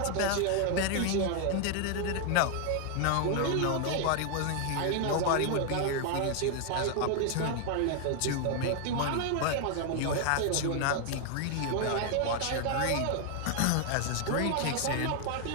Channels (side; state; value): both; different; correlation 0.00